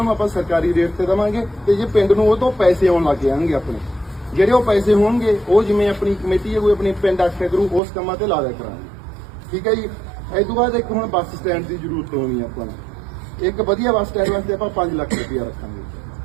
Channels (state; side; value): drops out; left; at 7.8 s